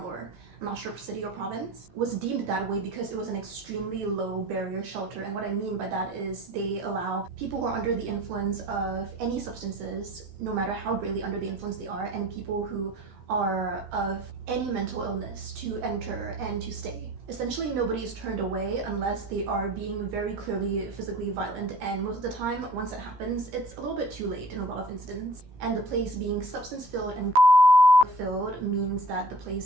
or I'm not sure city or province, was deemed that way because it was an extremely low barrier shelter. And what I mean by that is they allow people who are under the influence of any substances, no matter how greatly under the influence they are, and people who are of any mental illness to enter and to stay. Essentially, nobody is turned away unless they are being very clearly physically violent, and most of the time, once that happens, it's a little bit too late in a lot of incidents. And the place being substance-filled and filled means that the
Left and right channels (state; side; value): late; left; 15 ms